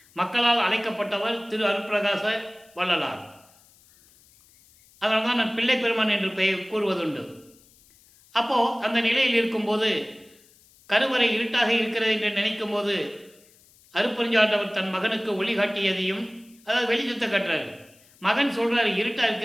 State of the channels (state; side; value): noise; left; hiss, 29 dB below the sound